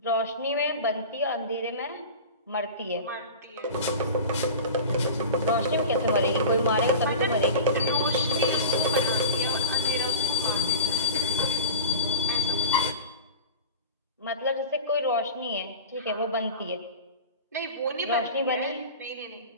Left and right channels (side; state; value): both; inverted; correlation -0.31